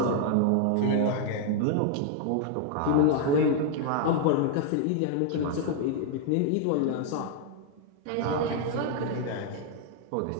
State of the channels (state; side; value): different; both; correlation 0.00